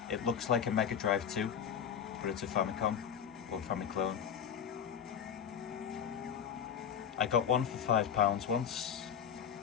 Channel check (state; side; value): quieter; right; 8.2 dB